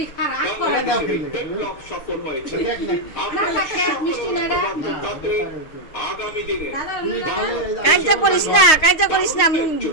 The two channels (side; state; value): right; late; 6.5 ms